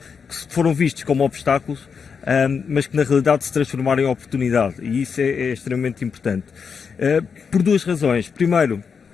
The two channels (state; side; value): quieter; right; 6.0 dB